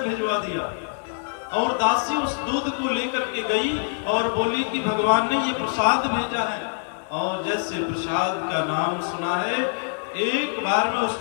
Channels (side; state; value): right; silent; digital silence